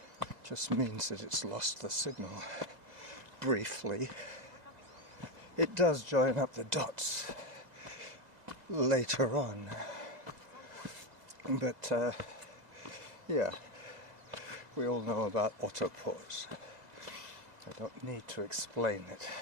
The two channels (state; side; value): late; left; 2.0 ms